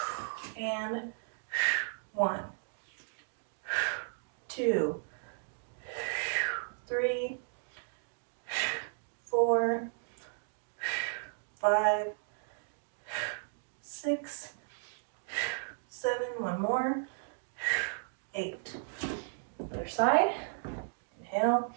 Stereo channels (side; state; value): left; silent; digital silence